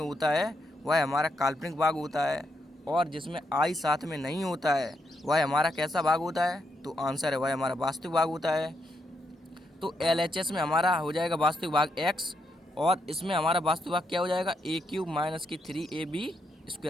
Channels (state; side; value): normal; both; correlation 0.79